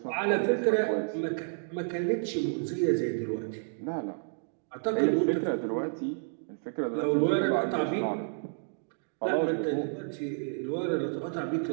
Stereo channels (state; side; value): silent; left; digital silence